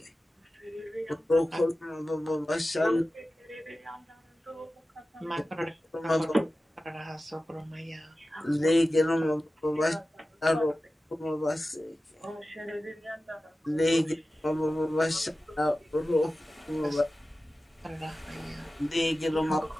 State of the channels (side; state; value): both; normal; correlation 0.95